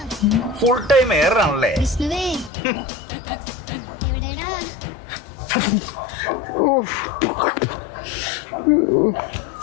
ഫുൾ ടൈം എയറാണല്ലേ?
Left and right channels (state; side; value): drops out; right; at 2.5 s